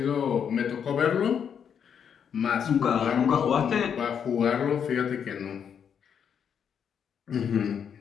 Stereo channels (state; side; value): quieter; right; 7.7 dB